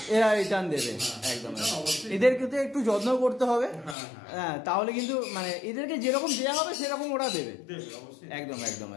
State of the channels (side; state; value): right; drops out; at 4.0 s